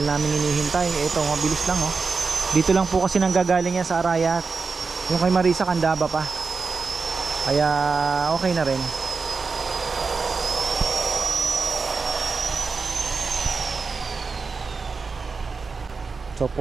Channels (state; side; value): quieter; left; 4.7 dB